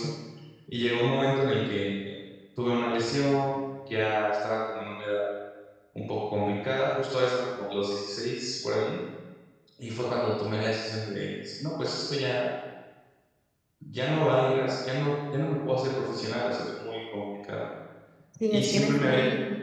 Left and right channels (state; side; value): identical; both; correlation 1.00